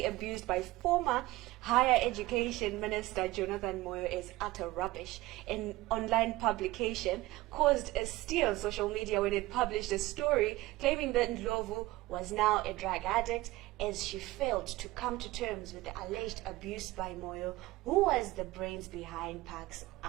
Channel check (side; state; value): left; quieter; 18.7 dB